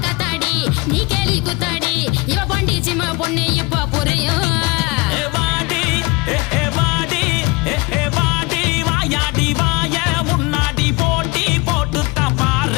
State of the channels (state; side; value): quieter; right; 25.6 dB